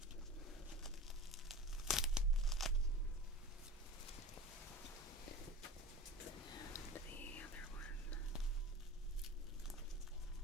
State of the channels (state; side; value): normal; both; correlation 0.34